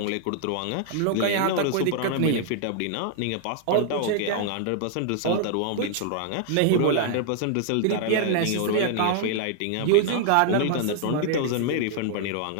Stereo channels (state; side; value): different; both; correlation -0.01